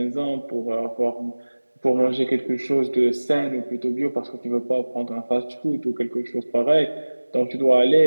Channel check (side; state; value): both; inverted; correlation -1.00